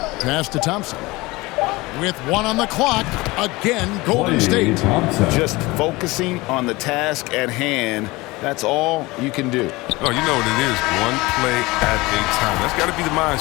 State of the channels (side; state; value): right; quieter; 21.9 dB